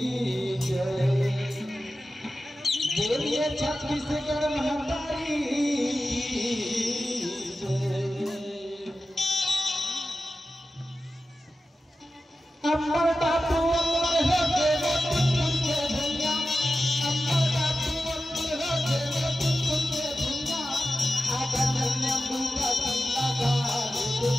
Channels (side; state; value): both; normal; correlation 0.93